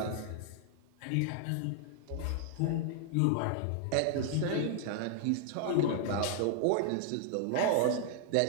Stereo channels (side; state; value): both; different; correlation -0.01